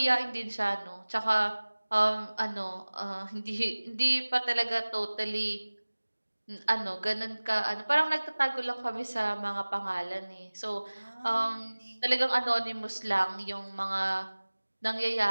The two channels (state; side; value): inverted; both; correlation -1.00